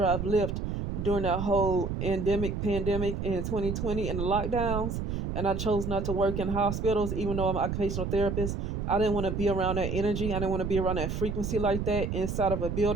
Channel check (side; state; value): right; noise; rumble, 3 dB below the sound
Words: Lyft during that whole pandemic in 2020 and the lockdowns, and I chose not to work in hospitals even though I'm an occupational therapist. I didn't want to be around that energy. I didn't want to be around that frequency like that inside of a